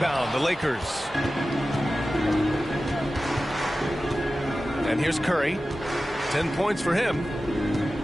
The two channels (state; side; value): normal; both; correlation 0.95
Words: the Lakers. And here's Curry. 10 points for him.